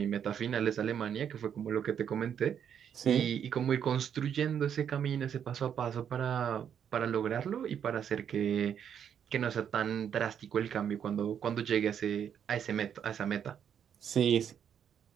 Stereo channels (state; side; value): quieter; left; 8.5 dB